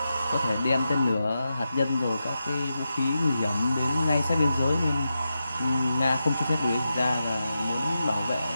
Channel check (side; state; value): both; inverted; correlation -0.89